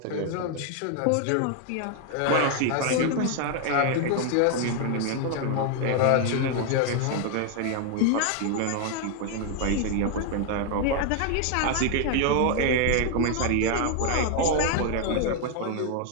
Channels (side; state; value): both; different; correlation 0.00